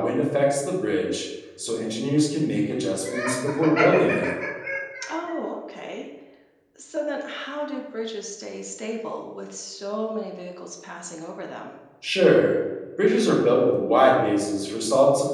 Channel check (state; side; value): identical; both; correlation 1.00